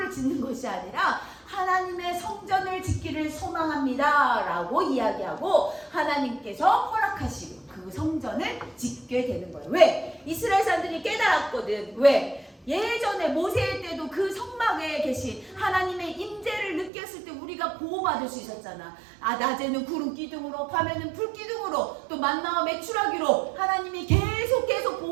짓는 것이 아니라 하나님의 성전을 짓기를 소망합니다 라고 이야기하고 하나님께서 허락하시고 그 성전을 짓게 되는 거예요. 왜? 이스라엘 사람들이 깨달았거든. 왜? 예전에 모세 때도 그 성막에 계신 하나님의 임재를 느꼈을 때 우리가 보호받을 수 있었잖아. 낮에는 구름 기둥으로, 밤에는 불 기둥으로, 또 만나와 메추라기로 하나님이 계속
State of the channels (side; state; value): left; drops out; at 16.9 s